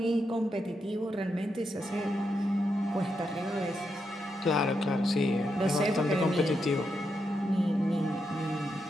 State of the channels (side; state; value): both; normal; correlation 0.83